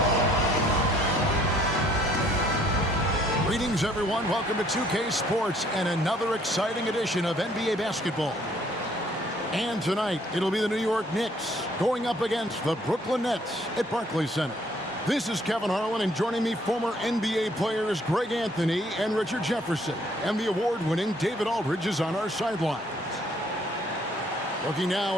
Greetings, everyone. Welcome to 2K Sports and another exciting edition of NBA basketball. And tonight, it'll be the New York Knicks going up against the Brooklyn Nets at Barclays Center. This is Kevin Harlan, and joining me, former NBA players Greg Anthony and Richard Jefferson. And the award-winning David Aldridge is on our sidelines. Looking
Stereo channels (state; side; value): normal; both; correlation 0.63